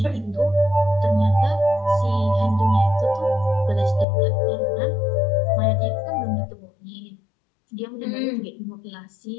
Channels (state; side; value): drops out; right; at 4.0 s